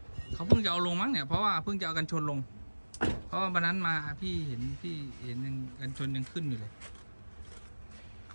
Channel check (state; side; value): inverted; both; correlation -1.00